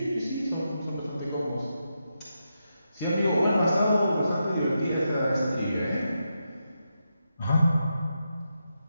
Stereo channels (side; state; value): both; inverted; correlation -0.85